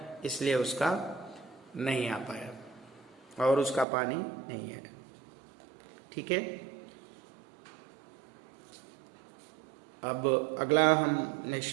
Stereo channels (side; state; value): left; drops out; at 3.9 s